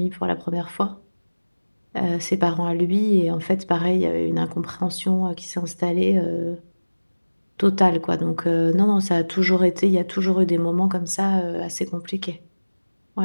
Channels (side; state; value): both; inverted; correlation -1.00